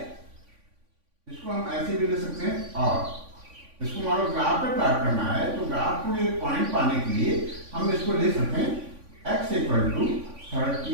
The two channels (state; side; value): late; left; 3.5 ms